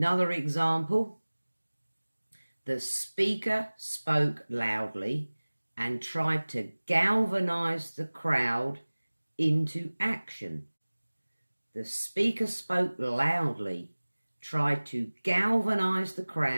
example, the speaker spoke loudly and tried to galvanise the crowd into action. The speaker spoke loudly, tried to galvanise the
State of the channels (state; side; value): inverted; both; correlation -1.00